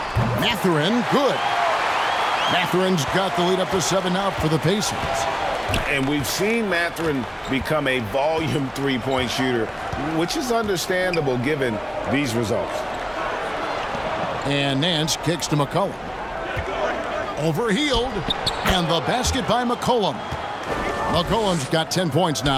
Mathurin, good. Mathurin's got the lead up to 7 out for the Pacers. And we've seen Mathurin become a volume 3-point shooter, which is understandable given these results. And Nance kicks to McCollum. Over Hield. And the basket by McCollum. McCollum's got 10 points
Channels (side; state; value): both; identical; correlation 1.00